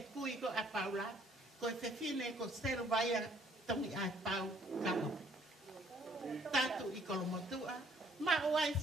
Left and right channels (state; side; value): normal; both; correlation 0.63